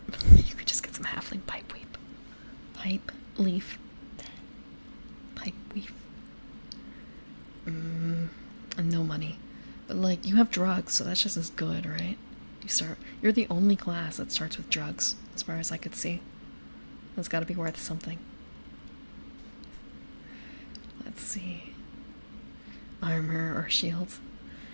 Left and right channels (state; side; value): inverted; both; correlation -1.00